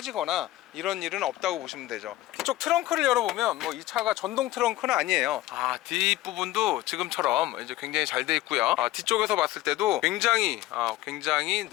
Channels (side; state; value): right; quieter; 16.1 dB